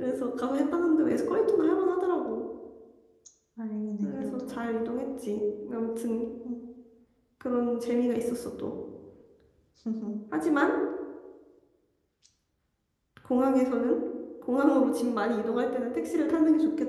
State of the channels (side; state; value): both; identical; correlation 1.00